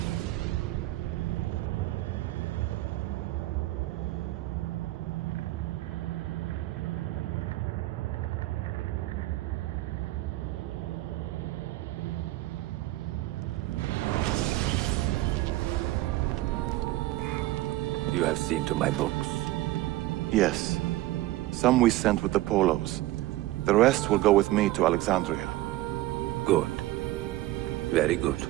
You have seen to my books. Yes. Some we sent with the Polos. The rest will go with me to Alexandria. Good. Very good.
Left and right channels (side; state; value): left; quieter; 17.1 dB